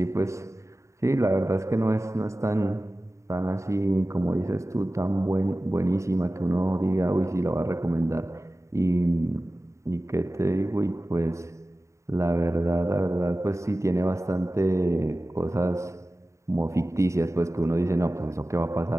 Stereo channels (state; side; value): late; left; 0.14 ms